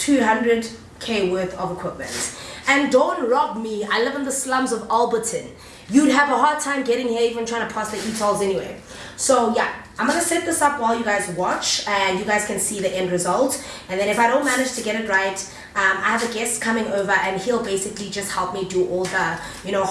worth of equipment. And don't rob me, I live in the slums of Alberton. You'd have a hard time getting here even trying to pass the e-tolls anyway. So yeah, I'm gonna set this up while you guys watch and you guys can see the end result. And then if I don't manage to get it right, I have a guest coming over and he'll basically just help me do all the, you know,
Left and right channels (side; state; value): both; identical; correlation 1.00